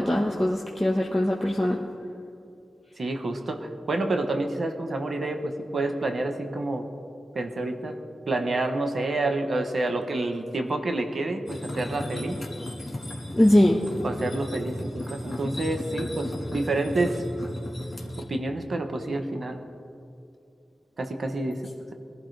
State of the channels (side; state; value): both; normal; correlation 0.93